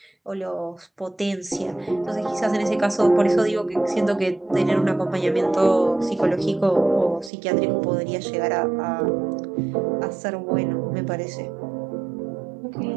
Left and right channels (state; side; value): drops out; left; at 7.3 s